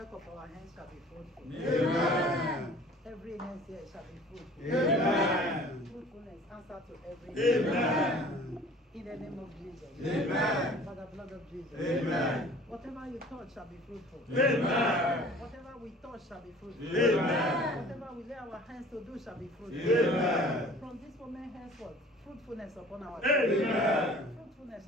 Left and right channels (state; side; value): normal; both; correlation 0.48